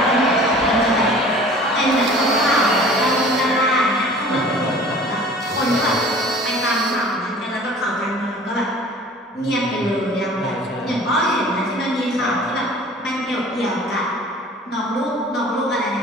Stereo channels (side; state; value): both; normal; correlation 0.46